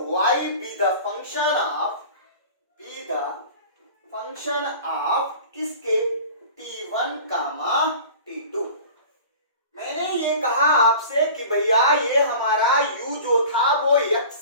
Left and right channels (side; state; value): both; inverted; correlation -0.40